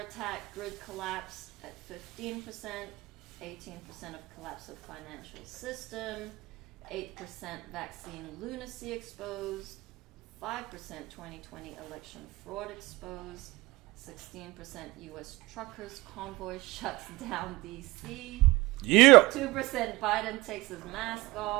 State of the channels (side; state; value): left; quieter; 21.2 dB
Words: attack, grid collapse at 15%, 18% of collapse of financial system, 8% vaccine lunacy exposed, 5% 2020 election fraud exposed, 16% U.S. truckers convoy shuts down D.C. Yeah. 2% Biden takes his mask